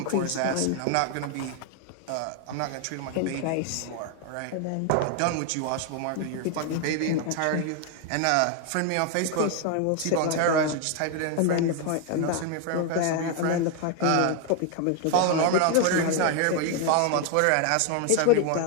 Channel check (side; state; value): both; different; correlation 0.00